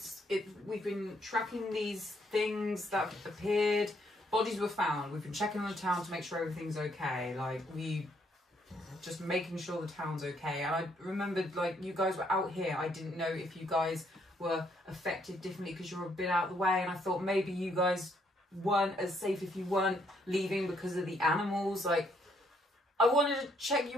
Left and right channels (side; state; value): both; normal; correlation 0.71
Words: we've been tracking these things that appeared. Bodies were found. We've been checking on the town to make sure everything's okay. Like just making sure the town's okay. And I remembered, like, you guys were out here. I didn't know if you guys were affected differently because you're a bit out of the way, and I thought maybe you guys weren't as safe if you weren't leaving because of the animals. Like, I wanted to check